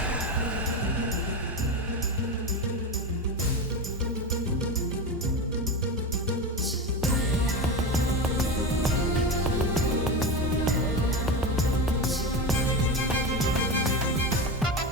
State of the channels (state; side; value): normal; both; correlation 0.20